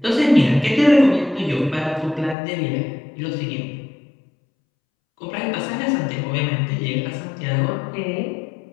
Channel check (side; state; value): right; drops out; at 2.4 s